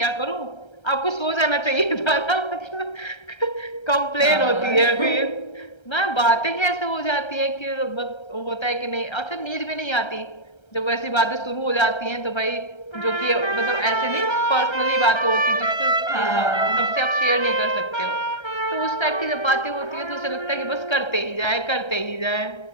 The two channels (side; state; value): right; late; 1.3 ms